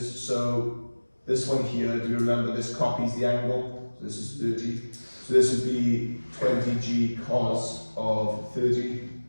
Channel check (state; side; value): inverted; both; correlation -1.00